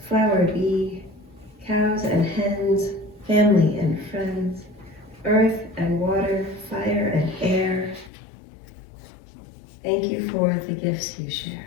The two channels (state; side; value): drops out; right; at 8.1 s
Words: flower bee, cows and hens, family and friends, earth and water, fire and air. Thank you for the gifts you share.